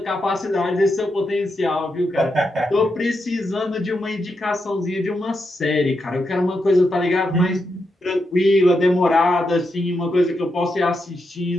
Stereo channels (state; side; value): normal; both; correlation 0.84